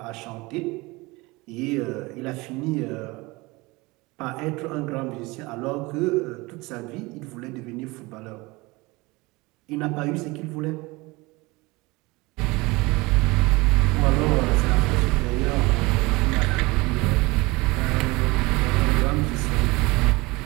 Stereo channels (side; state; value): left; quieter; 23.3 dB